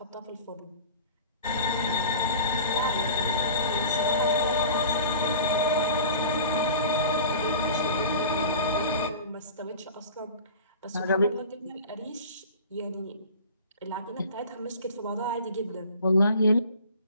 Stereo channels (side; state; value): both; inverted; correlation -0.41